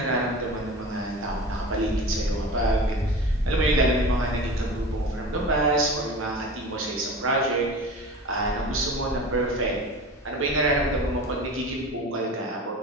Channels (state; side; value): normal; both; correlation 0.34